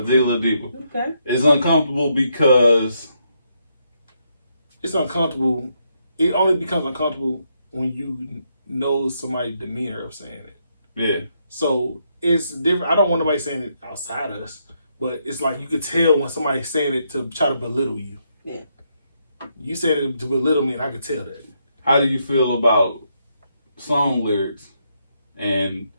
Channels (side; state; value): both; inverted; correlation -0.77